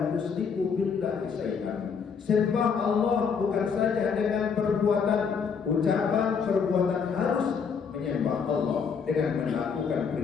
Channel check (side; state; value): right; quieter; 6.1 dB